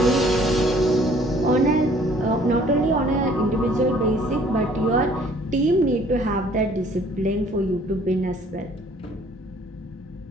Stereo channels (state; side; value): normal; both; correlation 0.57